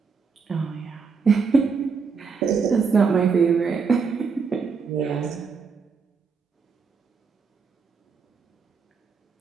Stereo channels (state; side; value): quieter; left; 5.3 dB